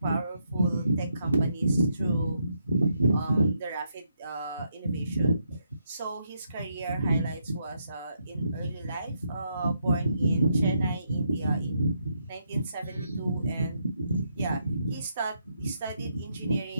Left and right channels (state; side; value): inverted; both; correlation -0.78